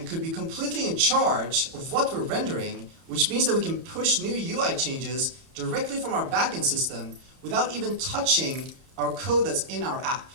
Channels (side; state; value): left; late; 31 ms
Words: could be completely in charge of what we're rendering, which means that we can push new UI changes directly from our backend system without even touching our code that's in our app.